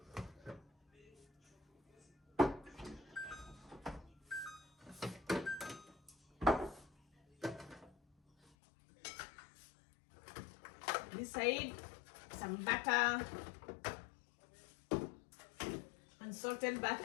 This side, some butter, unsalted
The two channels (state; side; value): drops out; right; at 8.5 s